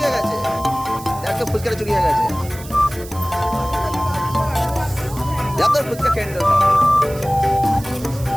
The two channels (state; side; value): noise; right; hiss, 16 dB below the sound